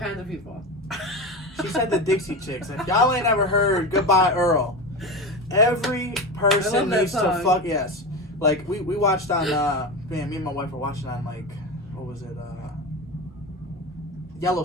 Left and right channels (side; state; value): both; normal; correlation 0.23